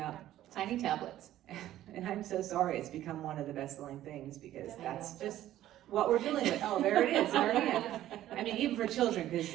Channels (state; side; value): quieter; left; 13.3 dB